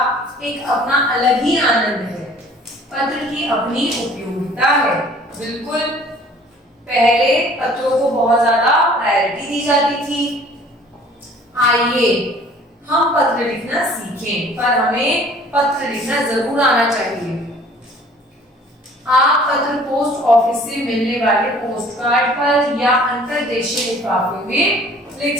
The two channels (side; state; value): both; normal; correlation 0.52